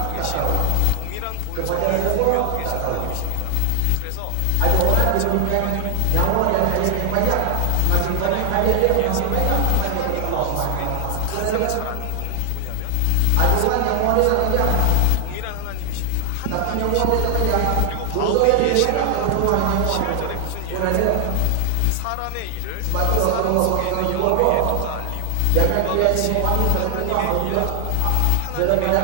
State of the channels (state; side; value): different; both; correlation 0.00